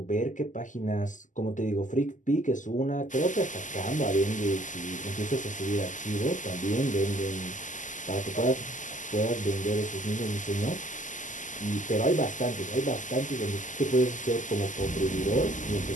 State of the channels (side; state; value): right; late; 0.37 ms